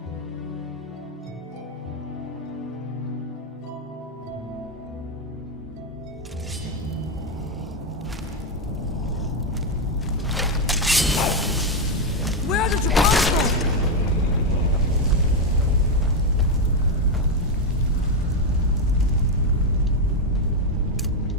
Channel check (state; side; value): normal; both; correlation 0.05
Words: Where did you come from?